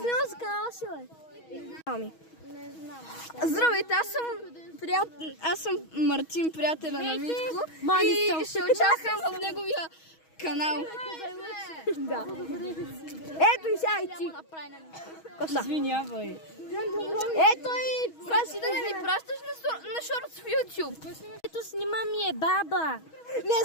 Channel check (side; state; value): right; late; 6.3 ms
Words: за канала си, бе. Здравейте, аз съм Мартин, приятеля на Митко. Мани И ще участвам в неговия канал. Да. Ето и сега и ти. Коста. Извинявай. Ето и... Праси да не ми пращаш на шортс в YouTube. Ето снима ми е баба. Не